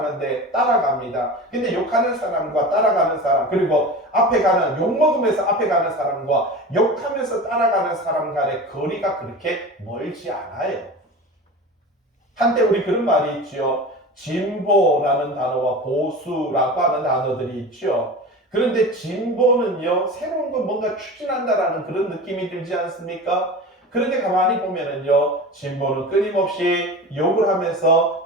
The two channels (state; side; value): normal; both; correlation 0.32